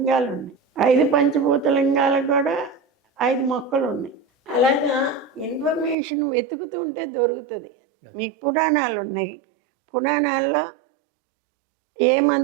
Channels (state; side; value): drops out; left; at 6.0 s